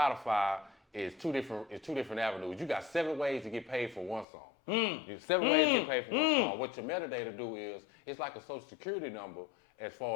is two different avenues. You got 7 ways to get paid for one song. You have 7 ways to get paid for one song. What your metadata do is, it's like a social security number as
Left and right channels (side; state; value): right; drops out; at 4.2 s